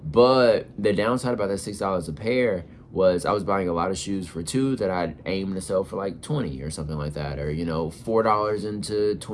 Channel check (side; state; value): both; identical; correlation 1.00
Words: But the downside about that $6 a pair was I was buying a lot of shoes for 2 that I'd aim to sell for like 20 or something like that. Or, you know, $4 into